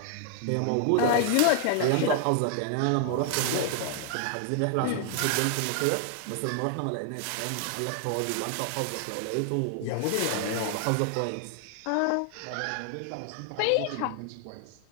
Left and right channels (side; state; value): both; different; correlation 0.00